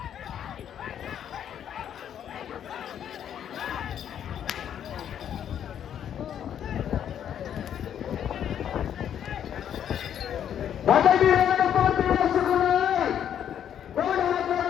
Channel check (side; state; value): right; quieter; 9.5 dB